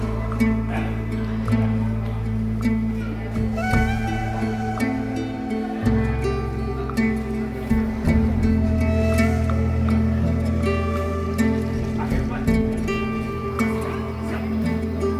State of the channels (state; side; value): identical; both; correlation 1.00